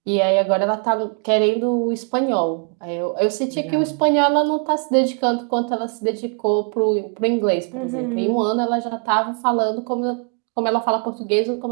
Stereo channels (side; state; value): left; quieter; 39.5 dB